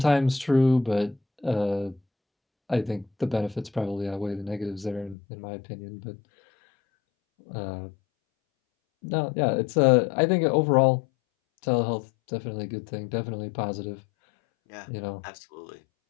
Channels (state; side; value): drops out; right; at 5.2 s